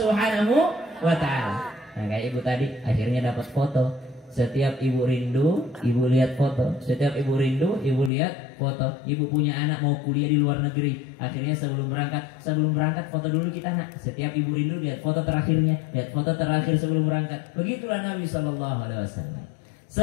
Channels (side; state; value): right; drops out; at 8.1 s